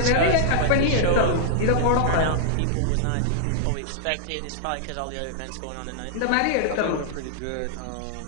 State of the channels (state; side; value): different; both; correlation -0.01